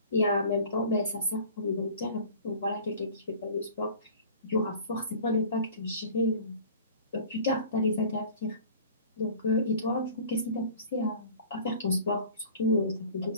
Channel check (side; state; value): both; inverted; correlation -0.45